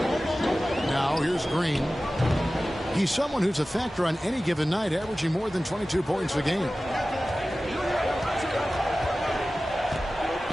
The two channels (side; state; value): both; normal; correlation 0.96